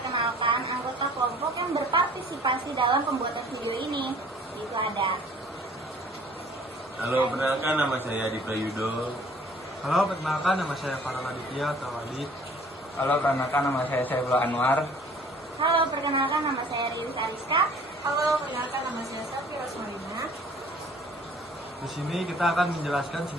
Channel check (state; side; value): normal; both; correlation 0.52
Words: anggota kelompok yang berpartisipasi dalam pembuatan video ini. Itu ada. Halo, perkenalkan nama saya Adi Prayudo. Halo, perkenalkan nama saya Farhan Aditya atau Adit. Halo, perkenalkan nama saya Saifullah Anwar. Halo, perkenalkan nama saya Riris Ariska. Halo, perkenalkan nama saya Safi Rosmarina. Di sini kita akan menjelaskan